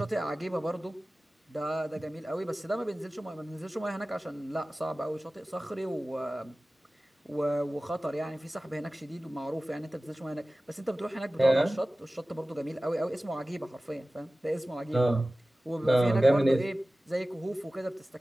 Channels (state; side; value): normal; both; correlation 0.97